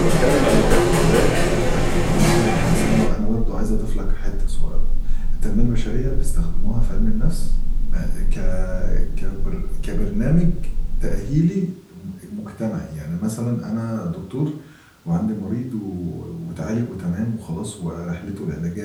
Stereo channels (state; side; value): identical; both; correlation 1.00